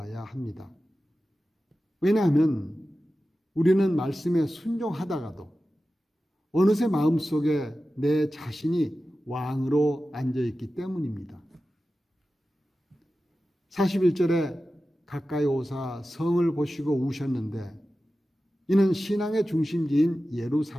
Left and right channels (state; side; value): normal; both; correlation 0.94